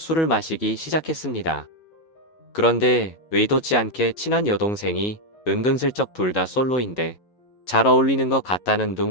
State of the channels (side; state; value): right; late; 11 ms